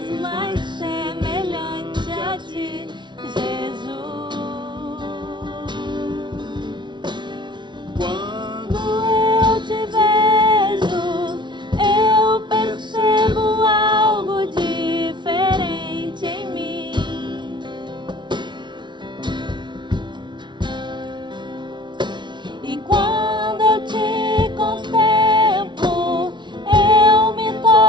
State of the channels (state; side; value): late; left; 0.23 ms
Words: mais semelhante a Ti, Jesus. quando Quando eu te vejo, eu percebo algo diferente em mim. E quando eu te contemplo, eu me